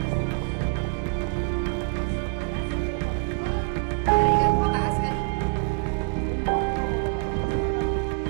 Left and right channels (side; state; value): left; silent; 55 dB below the other